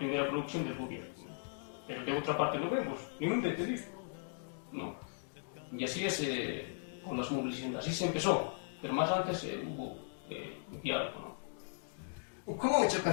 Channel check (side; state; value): right; silent; digital silence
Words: provocación del gobierno. Pero de otra parte no vemos, ningún detenido, ¿no? Y así es con las movilizaciones, así se empezó, pero más antes hubo diálogo, ¿no? ¿Cómo